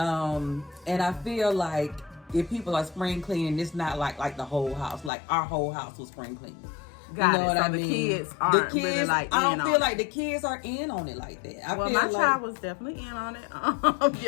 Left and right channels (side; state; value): right; drops out; at 5.1 s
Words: I feel like if people are spring cleaning, it's not like the whole house. Like our whole house was spring cleaning. Got you know it. what So I the mean? kids aren't really like I in don't on feel it. like the kids are in on it like that. Well, my child was definitely in on it